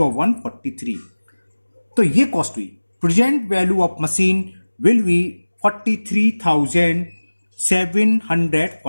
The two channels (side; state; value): both; inverted; correlation -1.00